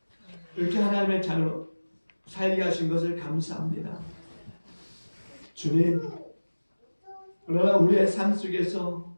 이렇게 하나님의 자녀로 살게 하신 것을 감사합니다. 주님, 그러나 우리의 삶 속에서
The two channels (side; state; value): both; inverted; correlation -1.00